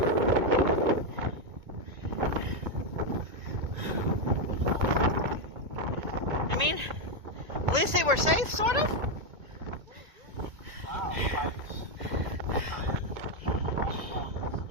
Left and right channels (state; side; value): late; left; 2.2 ms